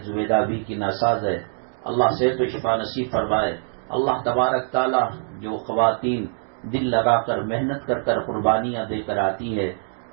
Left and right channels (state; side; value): silent; left; digital silence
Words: زبیدہ بھی کی ناساز ہے، اللہ صحت و شفا نصیب فرمائے۔ اللہ تبارک تعالی جو خواتین دل لگا کر محنت کر کر قربانیاں دے کر آتی ہے،